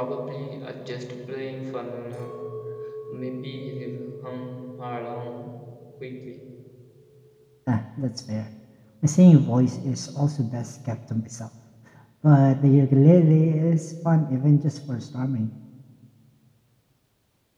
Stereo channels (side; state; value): both; identical; correlation 1.00